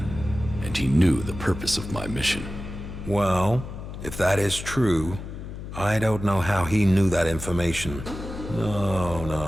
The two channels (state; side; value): noise; left; hum, 10 dB below the sound